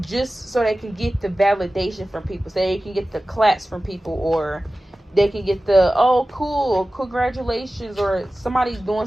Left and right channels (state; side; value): normal; both; correlation 0.96